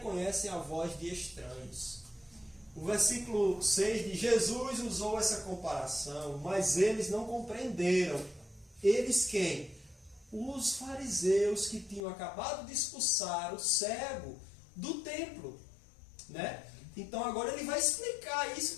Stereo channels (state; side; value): drops out; right; at 12.0 s